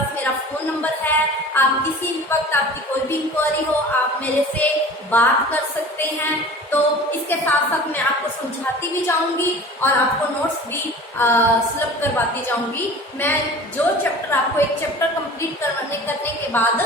मेरा फोन नंबर है। आप किसी भी वक्त आपकी कोई भी इंक्वायरी हो आप मेरे से बात कर सकते हैं। तो इसके साथ साथ मैं आपको समझाती भी जाऊंगी और आपको नोट्स भी सुलभ करवाती जाऊंगी। मैं जो चैप्टर आपको एक चैप्टर कंप्लीट करने के बाद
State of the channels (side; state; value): both; normal; correlation 0.41